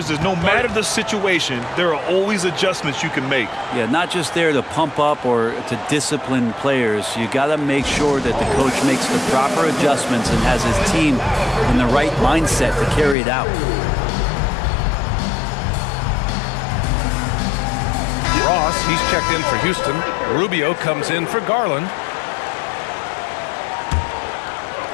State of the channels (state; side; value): drops out; right; at 13.2 s